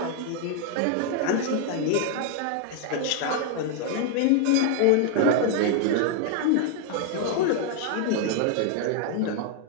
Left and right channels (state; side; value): different; both; correlation 0.00